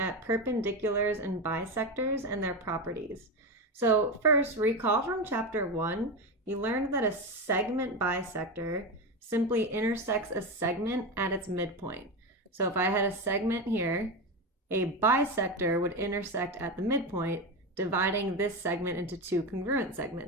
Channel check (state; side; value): normal; both; correlation 0.17